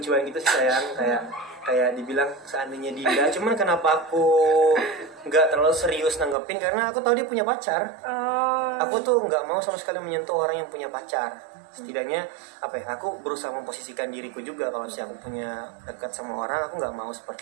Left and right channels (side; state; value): left; drops out; at 6.4 s